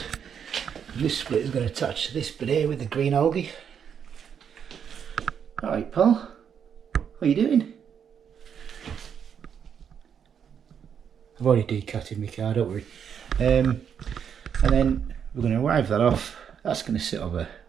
And this split is going to attach to this bit here with the green algae. Alright pal, what are you doing? I've already decatted my car, don't worry. And then we're going to wipe that off. That's going to sit over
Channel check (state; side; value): quieter; left; 7.8 dB